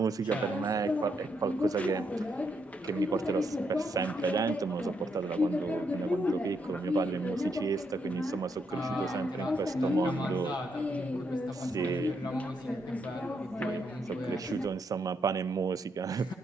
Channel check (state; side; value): normal; both; correlation 0.78